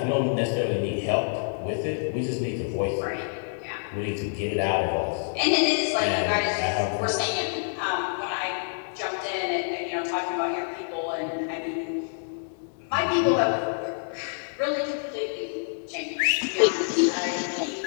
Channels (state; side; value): silent; right; digital silence